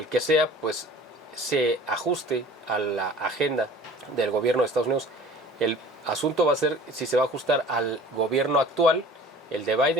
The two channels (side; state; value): both; normal; correlation 0.46